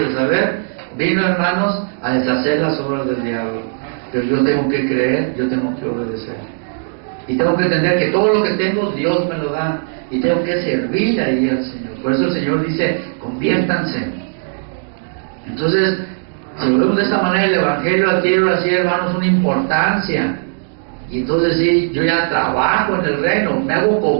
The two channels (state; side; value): silent; left; digital silence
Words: de saber, vino, hermanos, a deshacer las obras del diablo. Pero yo tengo que creer, yo tengo que obedecer. Y tengo que entender que todo lo que tengo, Dios me lo da. Y tengo que servir ahí al Señor. Por eso el Señor dice, conviértanse. Entonces, si lo vemos de esta manera, el Evangelio adquiere así, hermanos, una importancia. Y entonces sí, yo ya trabajo en el reino, me hago